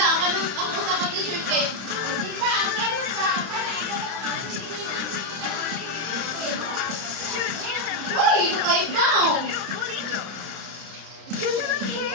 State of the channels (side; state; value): left; late; 30 ms